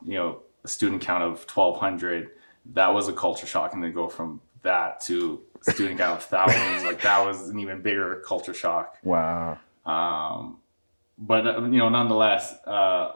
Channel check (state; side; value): inverted; both; correlation -1.00